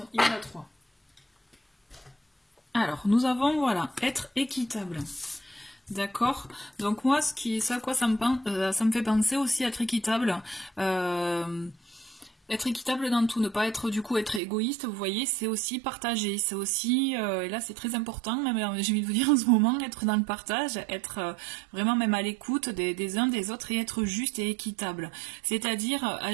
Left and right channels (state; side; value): drops out; left; at 14.4 s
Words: y en a trois. Alors, nous avons, voilà, être équitable. D'accord. Donc moi, ça à quoi ça me fait penser aussi, être équitable. Être équitable dans tout, ne pas être du coup être égoïste, vous voyez, c'est aussi partager, c'est aussi, et là c'est très important, même j'ai envie de vous dire en ce moment, être dans le partage, être vraiment même à l'écoute des uns des autres et être juste et équitable. C'est-à-dire